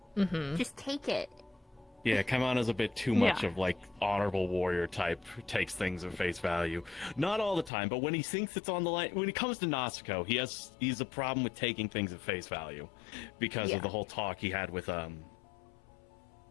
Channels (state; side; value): drops out; right; at 7.7 s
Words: Just take it. Yeah, Kaimana's a bit too much of, like, honorable warrior type, who takes things at face value. Not all the time, but when he thinks it's on the line, when it comes to Natsuko, he's a problem with taking things at face value. Because of the whole talk he had with,